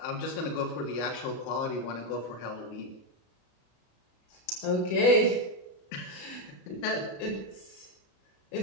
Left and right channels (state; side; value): late; right; 33 ms